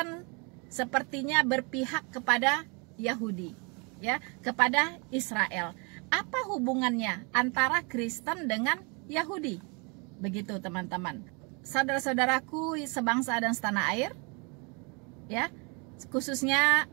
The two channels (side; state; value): left; quieter; 32.4 dB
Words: sepertinya berpihak kepada Yahudi ya, kepada Israel? Apa hubungannya antara Kristen dengan Yahudi? Begitu teman-teman. Saudara-saudaraku sebangsa dan setanah air ya, khususnya